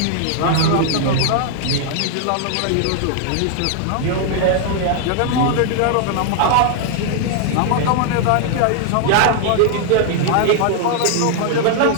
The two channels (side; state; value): both; different; correlation 0.00